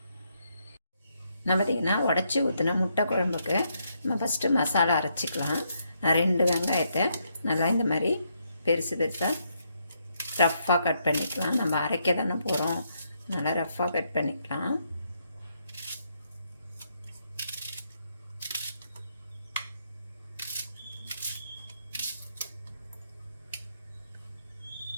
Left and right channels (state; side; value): inverted; both; correlation -0.76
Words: நான் பார்த்திங்கன்னா உடச்சி ஊற்றின முட்டை குழம்புக்கு நம்ம ஃபஸ்ட்டு மசாலா அரைச்சிக்கலாம். நான் 2 வெங்காயத்தை நல்லா இந்த மாதிரி பெருசு பெருசாக ரஃப்பாக கட் பண்ணிக்கலாம். நம்ம அரைக்க தானே போகிறோம், நல்லா ரஃப்பாக கட் பண்ணிக்கலாம்.